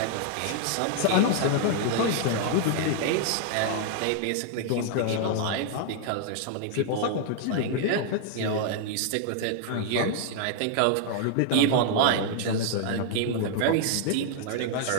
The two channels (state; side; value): different; both; correlation 0.00